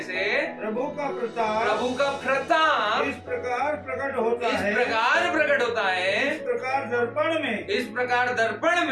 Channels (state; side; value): identical; both; correlation 1.00